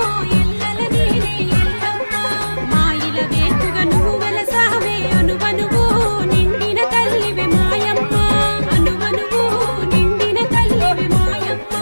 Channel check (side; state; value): both; inverted; correlation -1.00